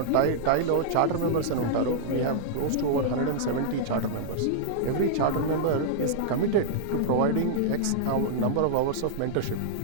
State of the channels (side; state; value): both; different; correlation -0.01